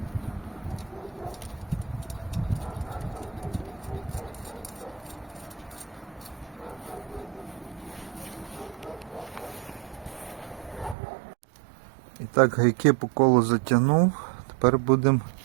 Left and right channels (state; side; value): drops out; left; at 11.0 s